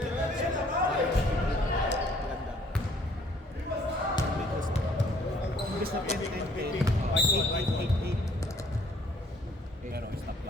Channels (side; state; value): both; normal; correlation 0.61